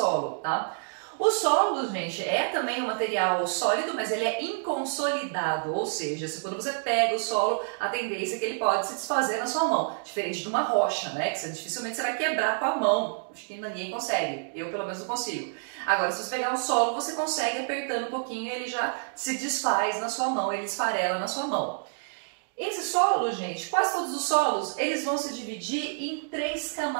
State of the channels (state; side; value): silent; left; digital silence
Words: tá? O solo, gente, é também um material sólido, mas ele é inconsolidado, ou seja, quando você pega o solo, a tendência é que ele pode se desfazer na sua mão, diferente de uma rocha, né, que dificilmente você vai quebrar com a mão, acho que ninguém consegue, eu pelo menos não consigo. Agora, se você pegar o solo, você consegue apertando um pouquinho, ele já se desfaz na sua mão, ele esfarela na sua mão. Esse solo, gente, quase todos os solos, eles vão se dividir em 3